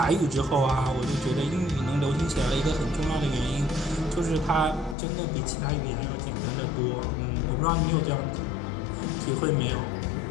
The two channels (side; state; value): right; drops out; at 5.0 s